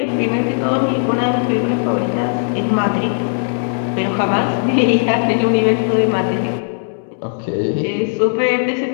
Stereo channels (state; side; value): silent; right; 68 dB below the other